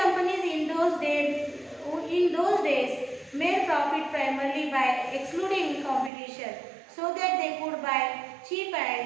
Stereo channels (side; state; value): left; drops out; at 6.1 s